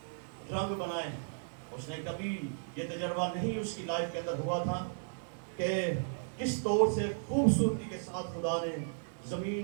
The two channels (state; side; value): silent; left; digital silence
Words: رنگ بنائے. اس نے کبھی یہ تجربہ نہیں اس کی لائف کے اندر ہوا تھا کہ کس طور سے خوبصورتی کے ساتھ خدا نے